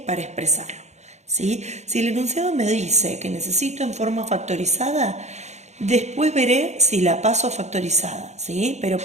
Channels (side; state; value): left; late; 0.33 ms